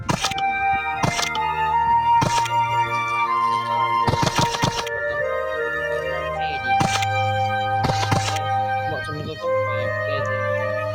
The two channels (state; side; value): identical; both; correlation 1.00